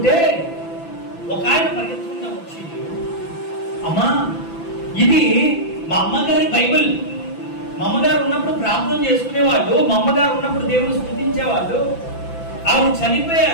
ఒక ఆయన పరిగెత్తుకుంటా వచ్చి, అమ్మా ఇది మా అమ్మగారి బైబిల్, మా అమ్మగారు ఉన్నప్పుడు ప్రార్థన చేసుకునేవాళ్ళు, మా అమ్మగారు ఉన్నప్పుడు దేవుని స్తుతించేవాళ్ళు, ఆవిడ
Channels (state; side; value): late; right; 5.9 ms